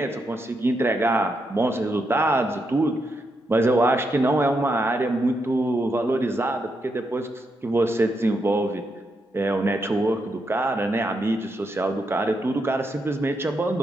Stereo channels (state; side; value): normal; both; correlation 0.82